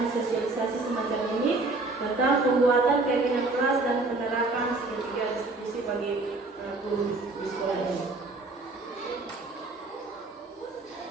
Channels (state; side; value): quieter; left; 3.3 dB